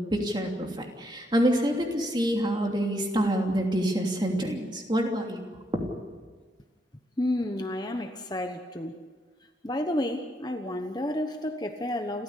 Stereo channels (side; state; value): both; normal; correlation 0.76